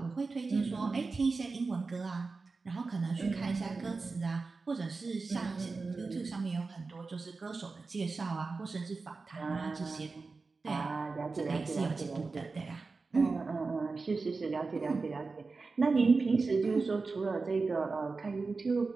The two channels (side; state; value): left; quieter; 4.1 dB